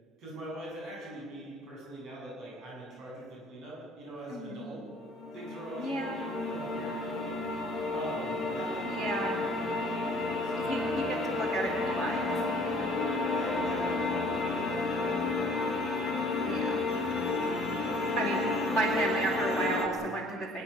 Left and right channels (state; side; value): normal; both; correlation 0.55